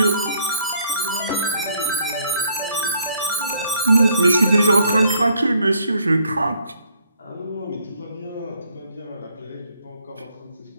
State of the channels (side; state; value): both; inverted; correlation -0.66